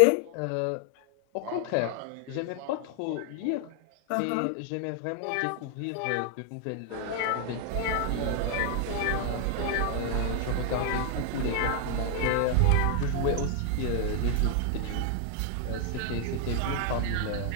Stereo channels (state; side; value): different; both; correlation 0.00